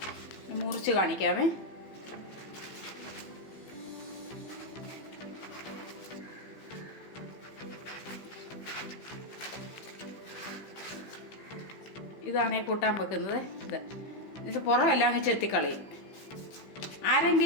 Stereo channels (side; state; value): right; late; 15 ms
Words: മുറിച്ച് കാണിക്കാമേ. ഇതാണ് ഈ കൂട്ടാൻ വെക്കുന്നത്. ഇത് പുറമെല്ലാം അങ്ങ് ചെത്തിക്കളയും.